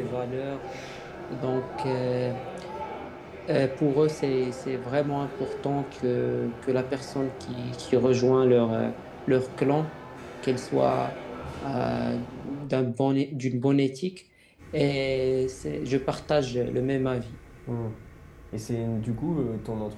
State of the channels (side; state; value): both; identical; correlation 1.00